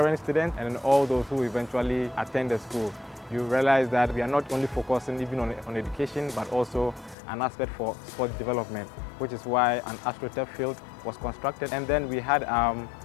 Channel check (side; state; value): right; drops out; at 7.2 s